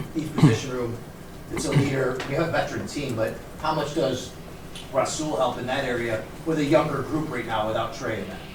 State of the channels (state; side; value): identical; both; correlation 1.00